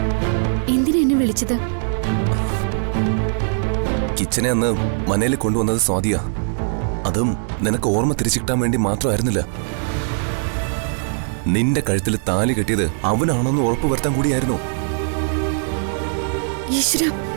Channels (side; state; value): left; silent; digital silence